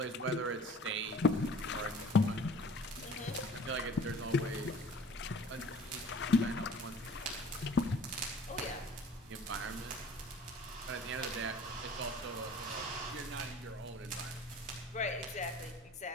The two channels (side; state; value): both; normal; correlation 0.48